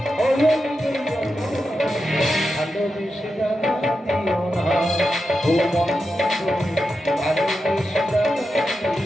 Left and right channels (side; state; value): both; normal; correlation 0.88